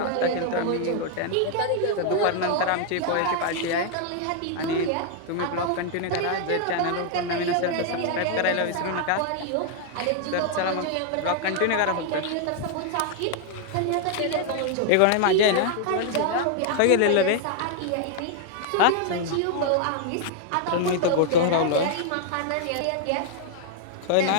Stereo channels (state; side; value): different; both; correlation 0.00